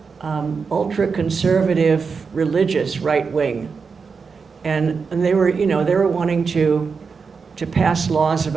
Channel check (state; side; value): quieter; left; 5.3 dB